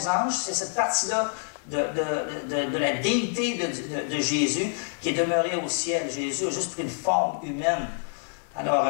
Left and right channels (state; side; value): silent; right; 60 dB below the other